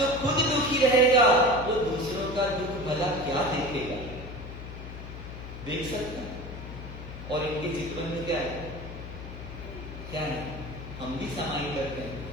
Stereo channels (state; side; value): noise; left; hum, 11 dB below the sound